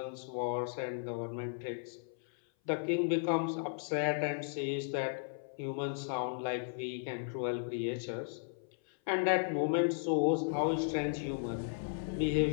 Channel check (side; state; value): right; silent; 54 dB below the other